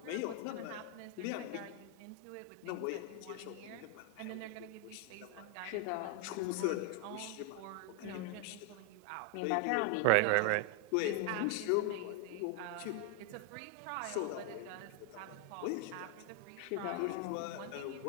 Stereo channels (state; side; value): different; both; correlation 0.00